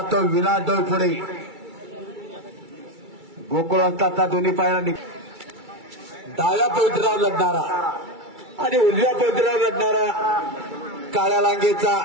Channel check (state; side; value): late; left; 2.3 ms